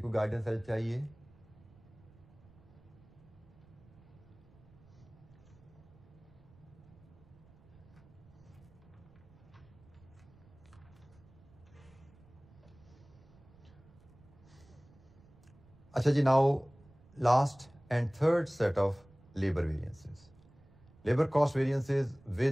कोई गाइडेंस हेल्प चाहिए? अच्छा जी, now last and third set of labour variances, labour cost variances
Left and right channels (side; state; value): right; noise; rumble, 25 dB below the sound